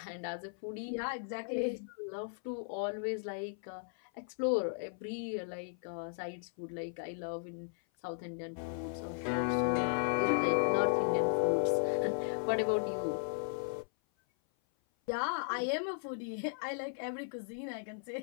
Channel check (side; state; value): right; silent; 54 dB below the other